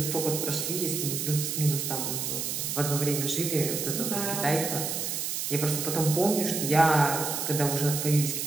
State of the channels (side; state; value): right; noise; hiss, 2 dB below the sound